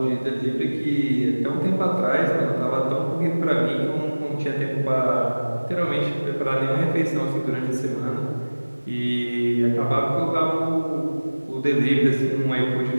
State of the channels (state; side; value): inverted; both; correlation -1.00